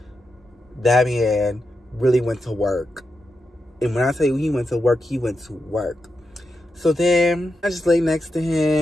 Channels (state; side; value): normal; both; correlation 0.87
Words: that man really went to work. And when I tell you he went to work, he went to work. So then I just lay next to